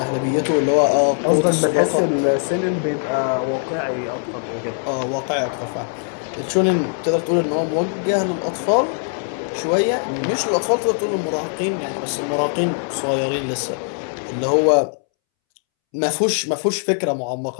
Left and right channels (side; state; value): right; silent; 65 dB below the other